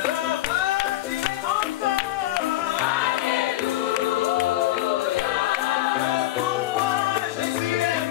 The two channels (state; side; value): quieter; right; 15.4 dB